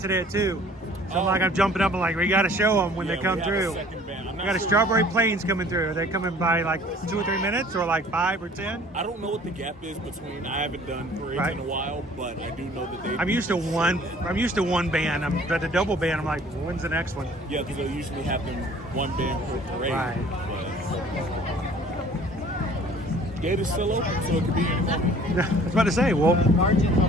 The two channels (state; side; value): normal; both; correlation 0.52